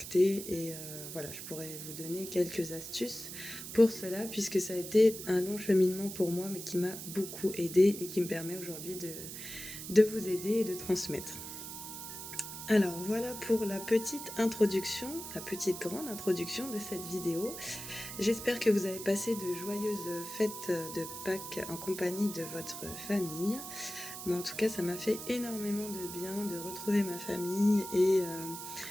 et voilà, je pourrais vous donner quelques astuces pour cela, puisque ça a été un long cheminement pour moi, mais qui m'a beaucoup aidé et qui me permet aujourd'hui de vous aider et de transmettre. Alors voilà pour la petite introduction, la petite grande introduction de cette vidéo. J'espère que vous avez passé de joyeuses fêtes de Pâques en compagnie de votre famille. Moi en tout cas ça m'a fait énormément de bien de retrouver ma famille, et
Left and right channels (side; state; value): right; noise; hiss, 9 dB below the sound